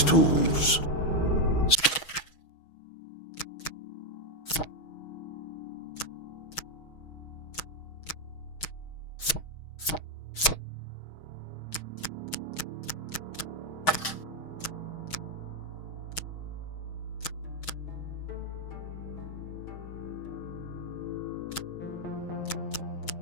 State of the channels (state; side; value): late; right; 6.3 ms